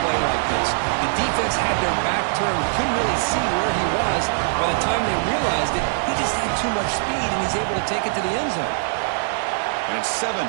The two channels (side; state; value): left; silent; digital silence